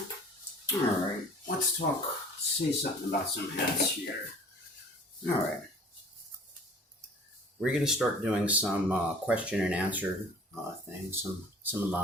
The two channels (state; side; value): normal; both; correlation 0.48